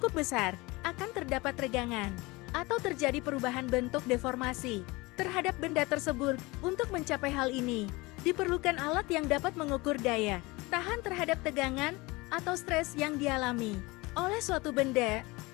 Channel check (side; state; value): right; quieter; 23.3 dB